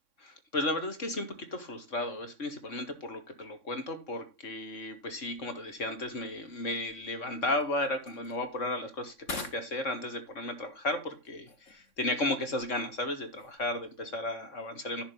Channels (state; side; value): late; right; 3.6 ms